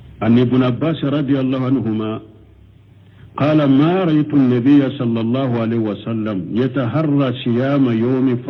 an ibn abbas radiyallahu anhuma قال ما رأيت النبي صلى الله عليه وسلم يتحرى صيام يوم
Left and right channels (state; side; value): identical; both; correlation 1.00